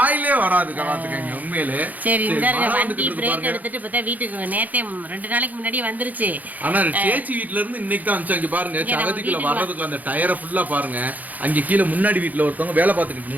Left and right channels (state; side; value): late; left; 0.080 ms